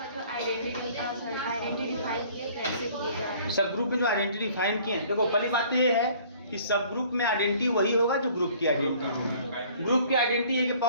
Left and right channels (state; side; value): inverted; both; correlation -0.54